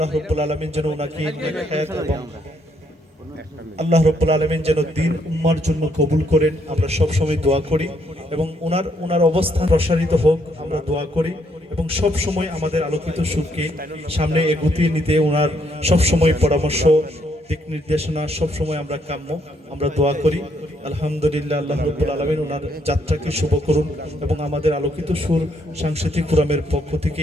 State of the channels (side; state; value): both; normal; correlation 0.72